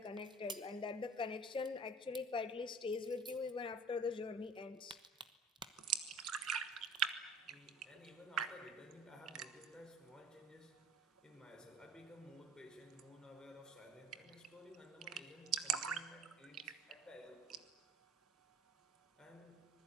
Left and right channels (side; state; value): both; normal; correlation 0.49